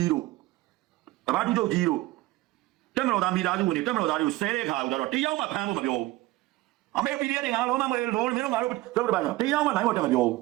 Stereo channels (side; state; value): left; quieter; 18.4 dB